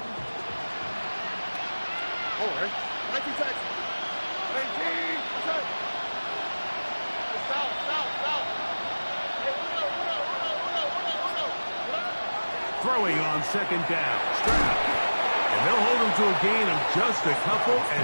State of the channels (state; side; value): inverted; both; correlation -1.00